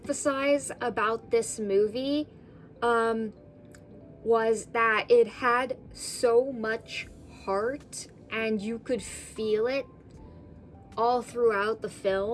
about this movie was that it had so much heart and you could feel it all throughout the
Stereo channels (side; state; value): both; identical; correlation 1.00